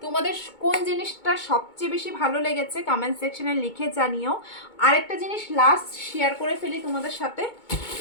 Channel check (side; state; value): right; late; 2.2 ms